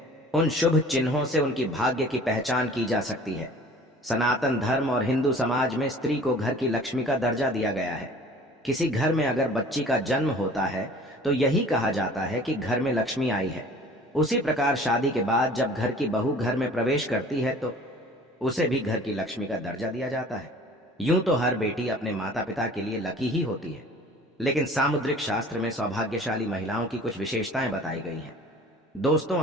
उन शुभ चिन्हों से उनकी भाग्य की पहचान की जा सकती है। सनातन धर्म और हिंदू समाज में स्त्री को घर की लक्ष्मी का दर्जा दिया गया है। किसी घर में अगर बच्ची का जन्म होता है तो यही कहा जाता है कि घर में लक्ष्मी आई है। उसी प्रकार शादी के बाद जब घर की बहू घर में प्रवेश करती है तो उसे भी घर की लक्ष्मी का दर्जा दिया जाता है। यूं तो हर बेटी अपने माता पिता के लिए लकी ही होती है, लेकिन सामुद्रिक शास्त्र में सौभाग्यशाली महिलाओं की कुछ विशेषताएं बताई गई हैं। दोस्तों,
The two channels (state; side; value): normal; both; correlation 0.47